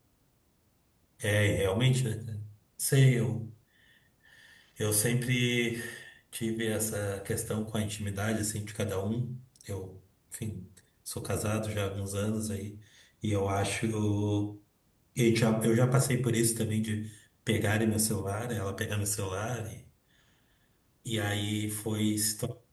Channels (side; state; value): both; identical; correlation 1.00